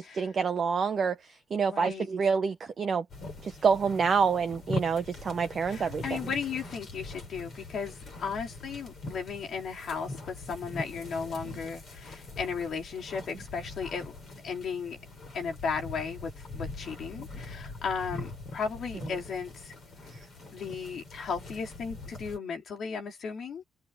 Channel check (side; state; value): both; normal; correlation 0.75